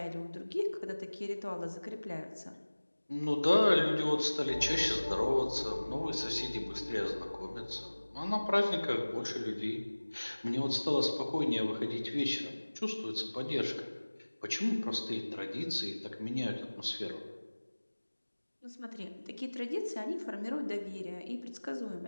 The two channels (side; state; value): both; inverted; correlation -1.00